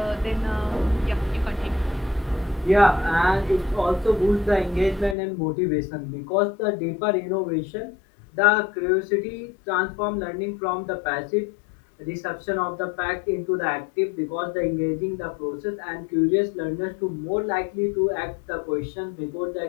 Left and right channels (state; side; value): drops out; right; at 5.2 s